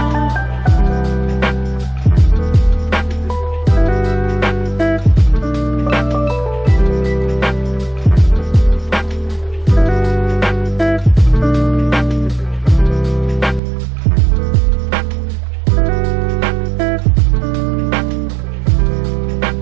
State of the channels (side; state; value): left; drops out; at 13.6 s